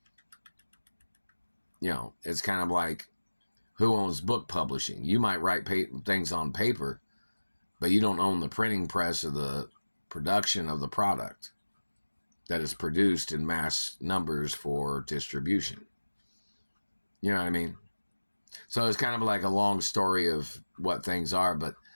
You know, it's kind of like, who owns book publishing? You might write things on paper, but you don't own the printing press or the production of the product that is produced in mass numbers for distribution. You know what I mean? So it's kind of like a long story of what things are, but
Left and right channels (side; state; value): both; inverted; correlation -1.00